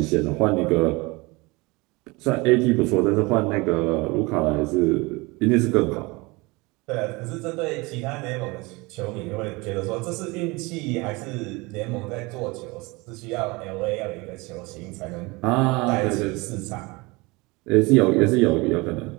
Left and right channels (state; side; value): quieter; left; 24.7 dB